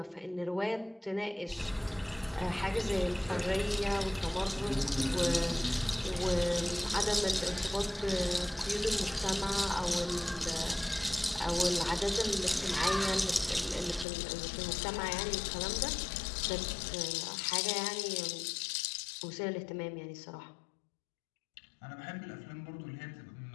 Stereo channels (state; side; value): drops out; right; at 14.1 s